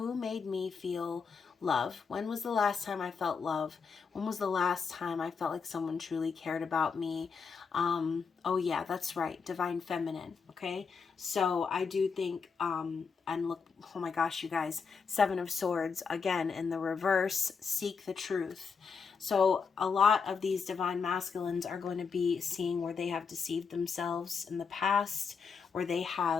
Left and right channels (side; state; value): right; quieter; 5.6 dB